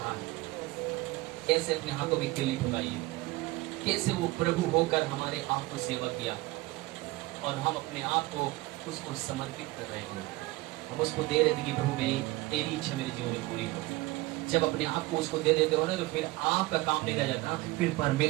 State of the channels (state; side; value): quieter; left; 20.7 dB